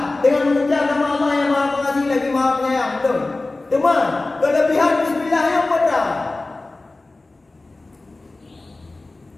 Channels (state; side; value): quieter; right; 3.2 dB